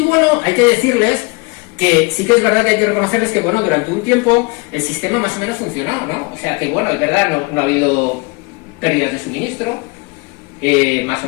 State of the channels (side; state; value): right; quieter; 28.3 dB